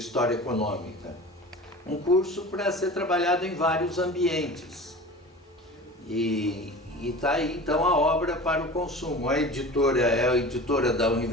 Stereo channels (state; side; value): normal; both; correlation 0.36